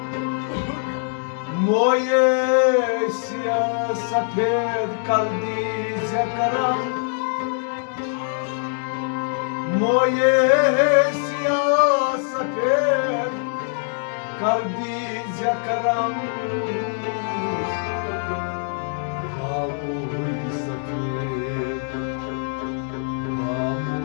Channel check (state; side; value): silent; right; 63 dB below the other